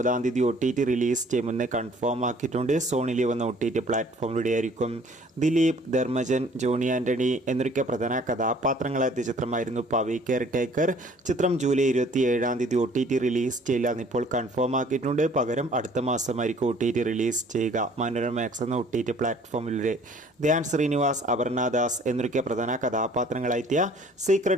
തീയതി OTT റിലീസ് ചെയ്യുമെന്ന് കൺഫേം ആക്കിയിട്ടുണ്ട്. സോണി ലിവ് എന്ന OTT പ്ലാറ്റ്ഫോമിലൂടെ ആയിരിക്കും. ദിലീപ്, ധർമ്മജൻ, ജോണി ആന്റണി എന്നൊക്കെ പ്രധാന കഥാപാത്രങ്ങളായ ചിത്രമായിരുന്നു പവി കെയർ ടേക്കർ. ചിത്രം ജൂലൈ 27-ാം തീയതി OTT റിലീസ് ചെയ്യില്ല ഇപ്പോൾ കൺഫേം ആക്കിയിട്ടുണ്ട്. പകരം അടുത്ത മാസമായിരിക്കും OTT റിലീസ് ചെയ്യുക മനോരമാക്സ് എന്ന OTT പ്ലാറ്റ്ഫോമിലൂടെ. ധ്യാൻ ശ്രീനിവാസ്, അപർണ ദാസ് എന്നൊക്കെ പ്രധാന കഥാപാത്രങ്ങളായെത്തിയ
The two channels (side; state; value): both; normal; correlation 0.55